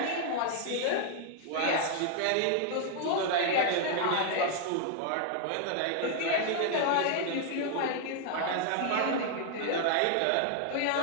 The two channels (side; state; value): both; different; correlation 0.00